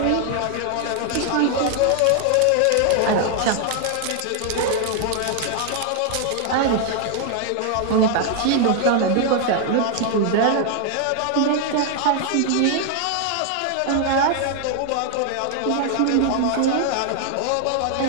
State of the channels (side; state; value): both; different; correlation 0.00